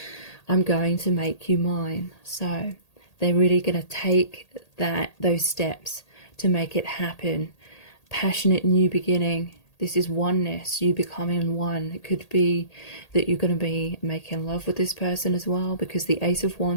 I'm going to make you mine. So they're really going to take those steps to make it happen. Passionate new beginning. This is oneness, you becoming one. It could be that you're going to be making love with this person as well, because the Ace of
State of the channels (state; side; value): late; right; 1.8 ms